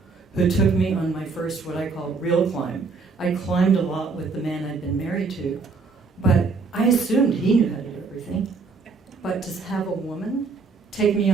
who took me on my first, what I call, real climb. I climbed a lot with the man I'd been married to, but I assumed he knew how to do everything. But to have a woman take me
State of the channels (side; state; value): left; quieter; 4.5 dB